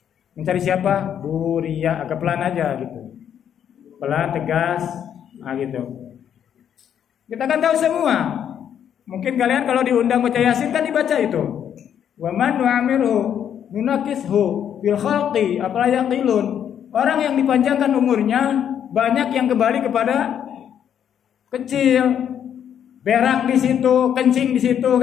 Mencari siapa? Bu Ria. Agak pelan aja gitu. Pelan, tegas, gitu. Kita kan tahu semua. Mungkin kalian kalau diundang baca Yasin kan dibaca itu. Wa man nu'amiru nunakishu fil khalqi afala yaqilun. Orang yang dipanjangkan umurnya banyak yang kembali kepada kecil, berak di situ, kencing di situ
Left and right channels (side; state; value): right; quieter; 9.1 dB